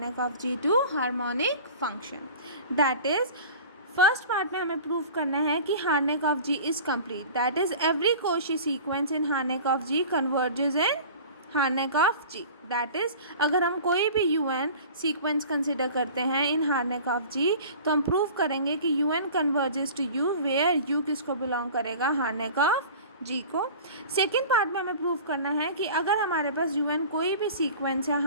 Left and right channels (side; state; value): both; inverted; correlation -0.40